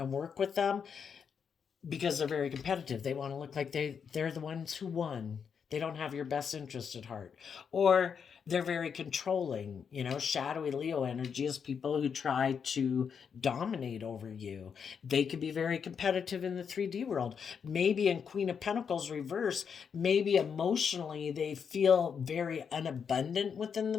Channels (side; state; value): right; quieter; 6.8 dB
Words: work with them because they're very competitive. They want to look like they're the ones who won. They don't have your best interest at heart. Or they're very controlling. You know, shadowy Leo energy is people who try to dominate over you. They could be very competitive in the 3D world. Maybe in Queen of Pentacles reverse, maybe emotionally they feel very unabundant within